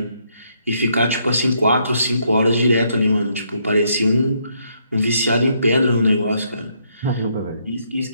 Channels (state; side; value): inverted; both; correlation -0.73